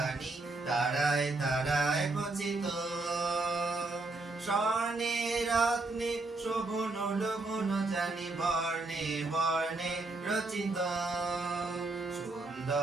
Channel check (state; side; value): quieter; left; 3.2 dB